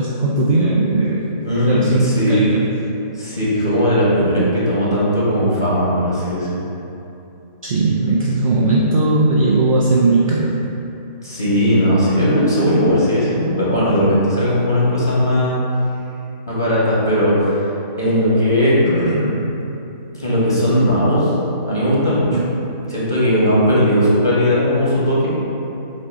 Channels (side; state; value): both; inverted; correlation -0.54